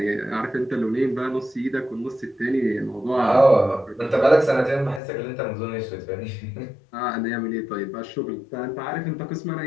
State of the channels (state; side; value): drops out; right; at 5.0 s